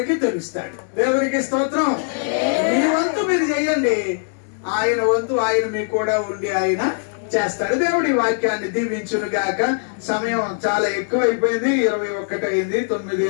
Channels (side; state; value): right; silent; digital silence